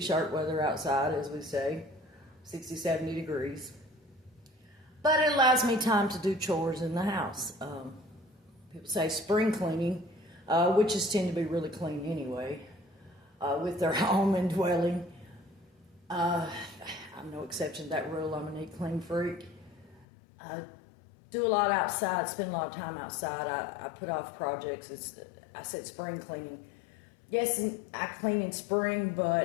weather outside, as we say, 60, 70 degrees. But it allows me time to do chores in the house. People say spring cleaning, witches tend to be really clean anyway, with their home and dwelling. I'm no exception to that rule. I'm a neat, clean freak. I do a lot outside, spend a lot of time outside. I put off projects. I said spring cleaning. Yes, I clean in spring,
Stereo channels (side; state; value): right; drops out; at 20.1 s